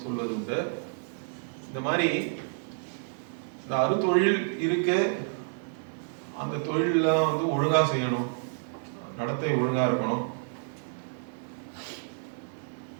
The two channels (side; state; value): left; silent; digital silence